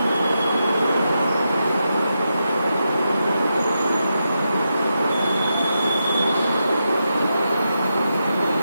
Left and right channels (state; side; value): inverted; both; correlation -0.86